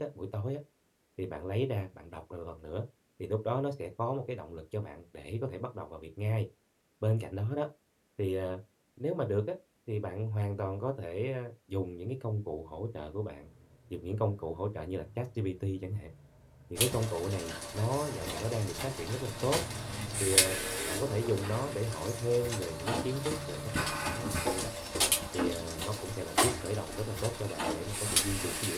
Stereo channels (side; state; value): both; identical; correlation 1.00